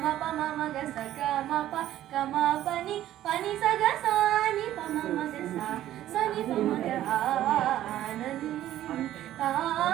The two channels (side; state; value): left; quieter; 13.0 dB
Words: म प म ग स ग म प ग म प नि स ग सा नि प म ग सा स नि प म ग